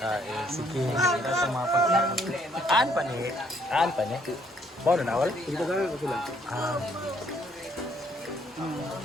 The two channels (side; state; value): both; normal; correlation 0.67